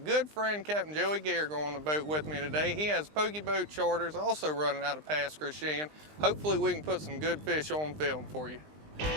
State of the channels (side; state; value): left; late; 20 ms